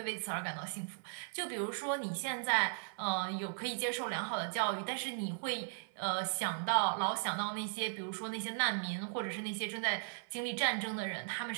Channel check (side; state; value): left; silent; 53 dB below the other